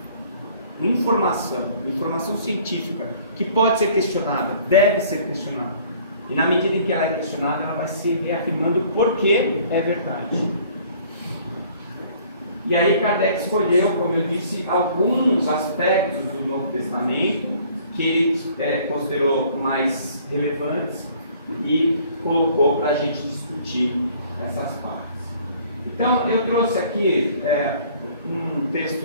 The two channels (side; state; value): both; inverted; correlation -0.55